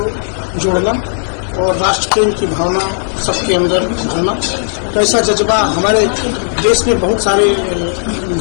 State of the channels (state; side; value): silent; right; digital silence